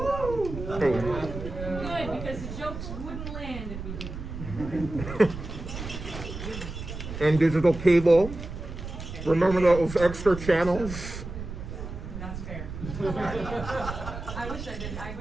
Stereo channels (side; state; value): right; noise; rumble, 8 dB below the sound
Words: Good, because the jokes wouldn't land if we didn't. And digital cable. Remember those extra channels? That's fair. I wish I did.